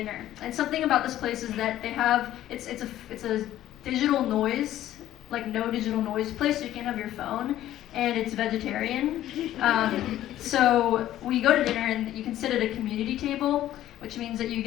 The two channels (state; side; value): quieter; right; 13.2 dB